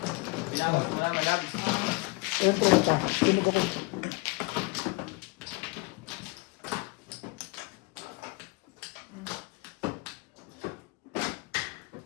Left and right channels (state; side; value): quieter; right; 26.1 dB